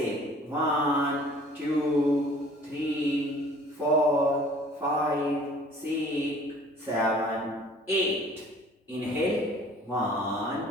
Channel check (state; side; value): normal; both; correlation 0.51